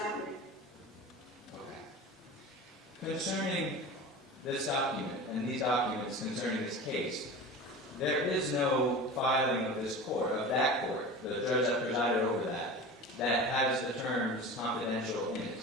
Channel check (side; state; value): both; normal; correlation 0.33